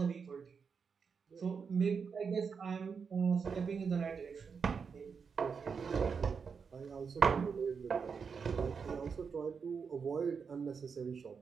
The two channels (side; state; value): left; quieter; 5.8 dB